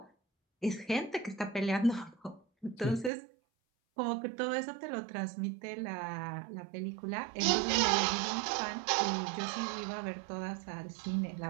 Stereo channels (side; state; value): left; drops out; at 3.1 s